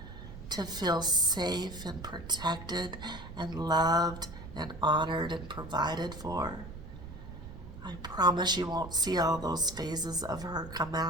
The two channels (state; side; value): noise; right; rumble, 13 dB below the sound